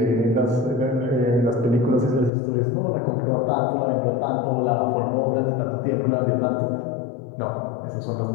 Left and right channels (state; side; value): drops out; right; at 2.3 s